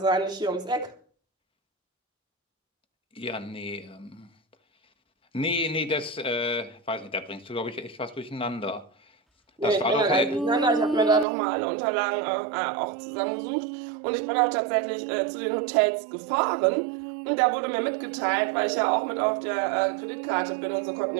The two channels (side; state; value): left; drops out; at 11.2 s